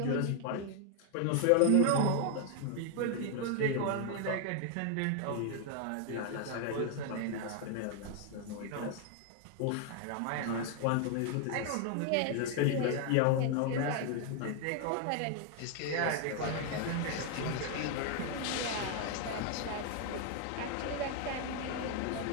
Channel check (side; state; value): both; different; correlation 0.00